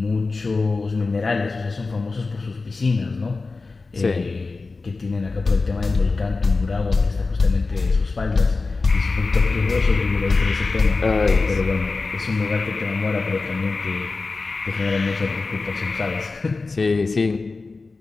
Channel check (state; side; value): quieter; right; 3.8 dB